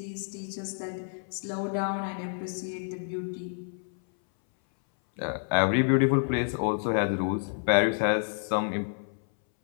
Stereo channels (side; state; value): right; silent; 59 dB below the other